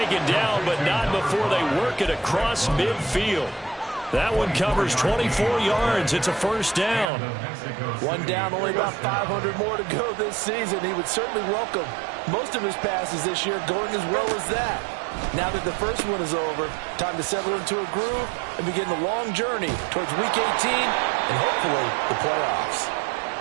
down, but not before they work it across midfield. That one covers 24 yards. It's a first down. One down, only about 500 more to go this season. He would certainly welcome most of his passes this year going as well as that. Now that the first one is over, time to settle into a groove and begin the long journey towards Week 18 and hopefully the playoffs.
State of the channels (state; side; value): drops out; left; at 7.1 s